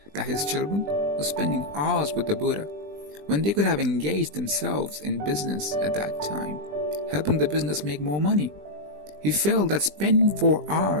that his children were spending hours with the Buddha when they could have engaged themselves in business at that time, helping the business make more money. He felt that spending 4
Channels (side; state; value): left; late; 20 ms